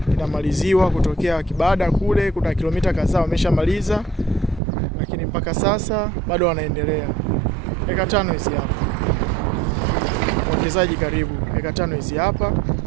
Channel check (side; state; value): left; drops out; at 4.6 s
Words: inamaliziwa kutokea Kibada kule, kuna kilomita kadhaa wameshamaliza, lakini mpaka sasa bado wanaendelea. Eka 5 hizi hapa. Mwekezaji karibu. Eka 5 hizi hapa